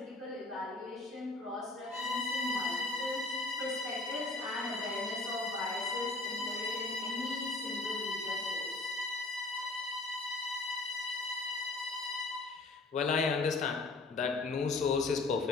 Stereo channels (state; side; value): quieter; right; 3.3 dB